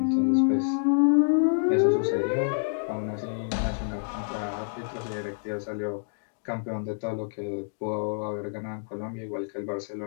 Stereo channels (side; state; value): right; silent; digital silence